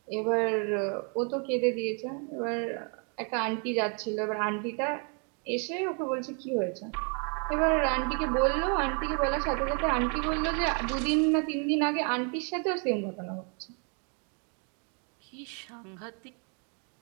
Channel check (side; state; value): left; quieter; 37.9 dB